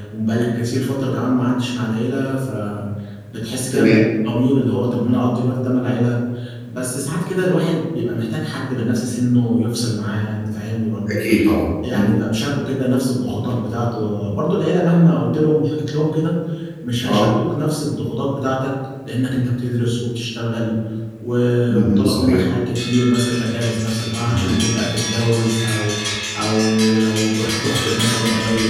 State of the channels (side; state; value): both; identical; correlation 1.00